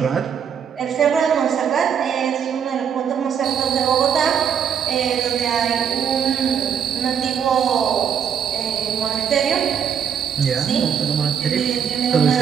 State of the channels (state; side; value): quieter; left; 7.8 dB